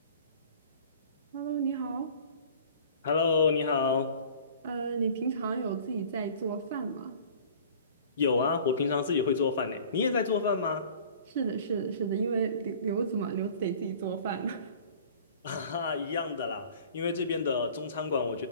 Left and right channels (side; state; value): both; inverted; correlation -0.47